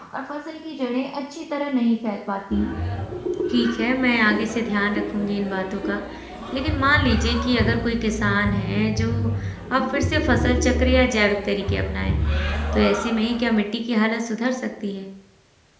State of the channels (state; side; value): identical; both; correlation 1.00